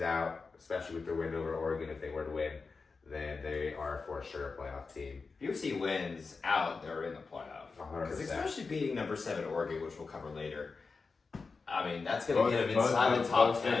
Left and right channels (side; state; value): right; quieter; 4.5 dB